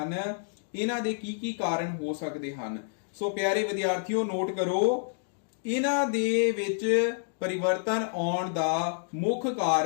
ਇਹਨਾਂ ਦੇ ਕੀ ਕਾਰਨ ਹੋ ਸਕਦੇ ਹਨ। ਸੋ ਪਿਆਰੇ ਵਿਦਿਆਰਥੀਓ ਨੋਟ ਕਰੋ, ਇਹਨਾਂ ਦੇ ਵਿੱਚ ਪਰਿਵਰਤਨ ਆਉਣ ਦਾ ਮੁੱਖ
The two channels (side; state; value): right; silent; digital silence